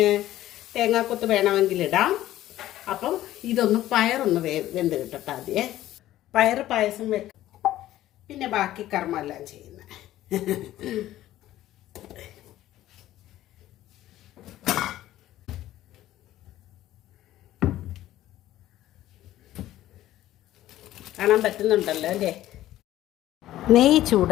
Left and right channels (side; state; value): right; quieter; 14.2 dB